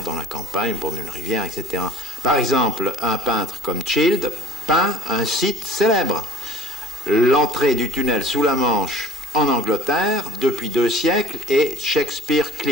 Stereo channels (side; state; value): both; normal; correlation 0.48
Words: la campagne, au bord d'une rivière, etc. Par exemple, un peintre comme Child peint un site célèbre. L'entrée du tunnel sous la Manche en Angleterre, depuis 2 siècles, est Shakespeare